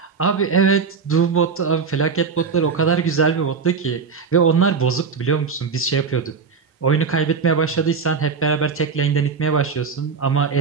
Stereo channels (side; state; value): left; quieter; 5.5 dB